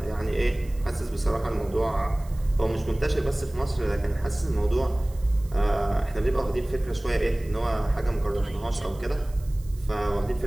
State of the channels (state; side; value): noise; right; hiss, 25 dB below the sound